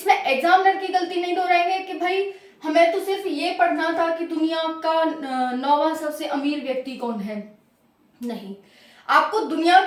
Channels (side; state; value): both; identical; correlation 1.00